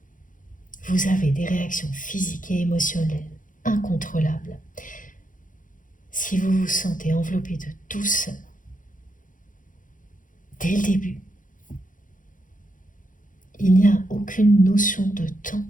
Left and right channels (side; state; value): right; late; 0.38 ms